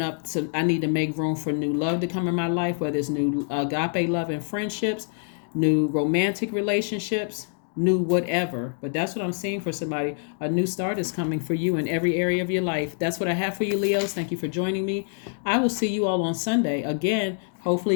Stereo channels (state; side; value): silent; right; 61 dB below the other